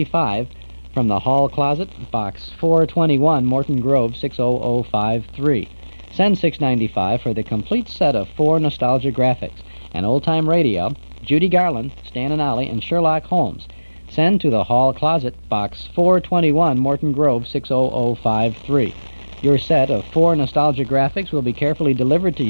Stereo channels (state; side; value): inverted; both; correlation -1.00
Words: from the Hall Closet, Box 421, Morton Grove, 60053. Send $6.95 for the complete set of 4 nostalgia graphics, an old-time radio, Judy Garland, Stan and Ollie, and Sherlock Holmes. Send to the Hall Closet, Box 421, Morton Grove, 60053. Your set of 4 nostalgia graphics will be carefully delivered to